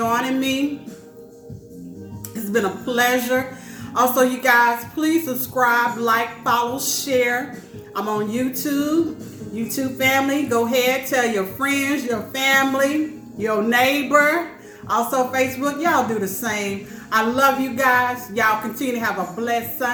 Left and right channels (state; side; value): identical; both; correlation 1.00